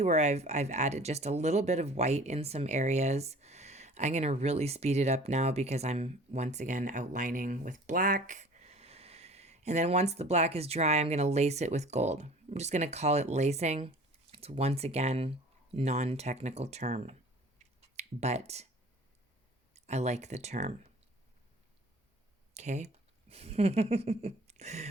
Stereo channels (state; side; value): normal; both; correlation 0.46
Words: where I've added just a little bit of white in some areas. I'm going to really speed it up now because I'm once again outlining with black. And then once the black is dry, I'm going to lace it with gold. I'm just going to call it lacing. It's once again non-technical term, but I like the term. Okay.